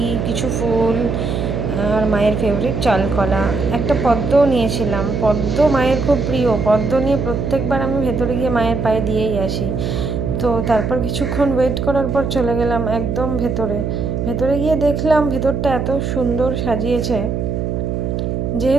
কিছু ফুল, আর মায়ের ফেভারিট চালকলা, একটা পদ্মও নিয়েছিলাম। পদ্ম মায়ের খুব প্রিয়, পদ্ম নিয়ে প্রত্যেকবার আমি ভেতরে গিয়ে মায়ের পায়ে দিয়েই আসি। তো তারপর কিছুক্ষণ ওয়েট করার পর চলে গেলাম একদম ভেতরে। ভেতরে গিয়ে দেখলাম ভেতরটা এত সুন্দর সাজিয়েছে,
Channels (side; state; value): right; noise; hum, 1 dB below the sound